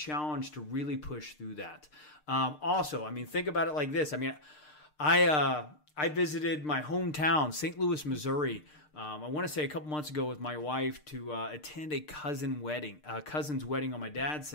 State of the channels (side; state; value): right; late; 6.6 ms